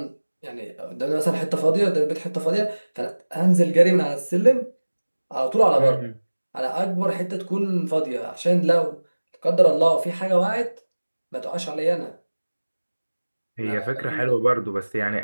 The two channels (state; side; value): inverted; both; correlation -1.00